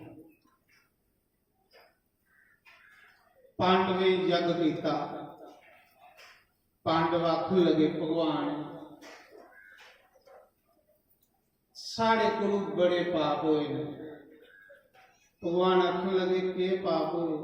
पांडवे यज्ञ किया पांडव आखन लगे भगवान साढ़े को बड़े पाप होए ने भगवान आखन लगे के पाप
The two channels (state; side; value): identical; both; correlation 1.00